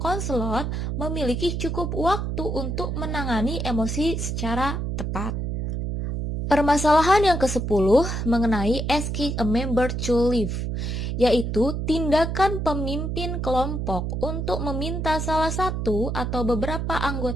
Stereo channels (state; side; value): noise; right; hum, 2 dB below the sound